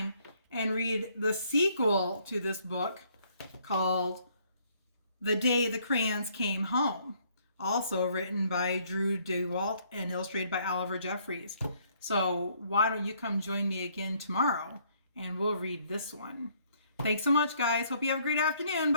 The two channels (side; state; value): both; inverted; correlation -0.66